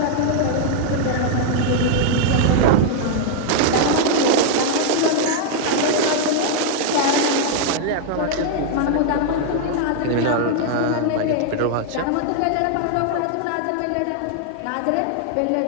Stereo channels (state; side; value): different; both; correlation 0.00